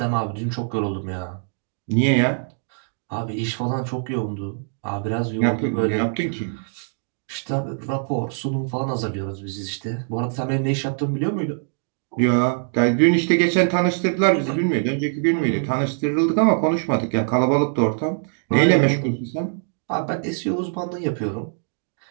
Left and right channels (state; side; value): silent; left; digital silence